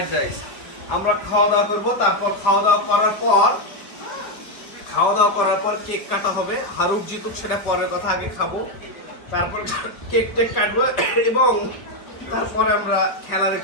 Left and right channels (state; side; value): late; right; 4.8 ms